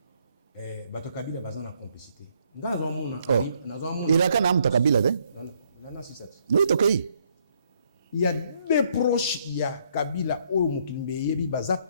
Bato Kabila bazan la complicité. Il a qu'un âme ta Kabila, hein? Oui, ok. Il y a des proches, il y a Kabila, Mukimbe, Yebi, Baza,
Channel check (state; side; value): inverted; both; correlation -0.70